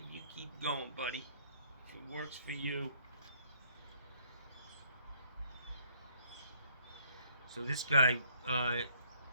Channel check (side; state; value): both; inverted; correlation -0.64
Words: you keep going, buddy. If it works for you. So this guy,